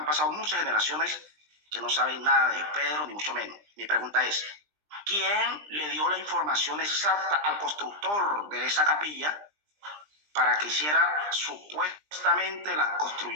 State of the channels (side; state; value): left; late; 20 ms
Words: pasado muchas generaciones que no saben nada de Pedro, ni mucho menos. Mi pregunta es, ¿quién le dio la información exacta al constructor de esa capilla para que hiciera, supuestamente, la